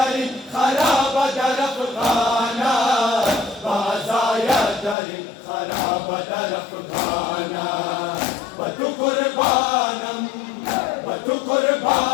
खराब दरफ खाना बाज़ाया दरी खराब दरफ खाना बतु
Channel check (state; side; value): drops out; right; at 5.0 s